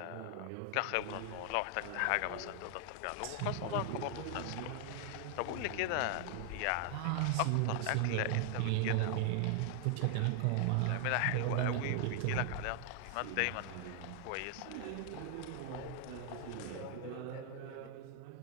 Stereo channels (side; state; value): both; different; correlation 0.00